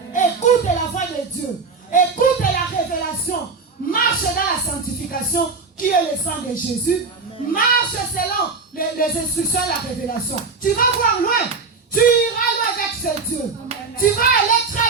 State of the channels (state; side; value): quieter; left; 4.5 dB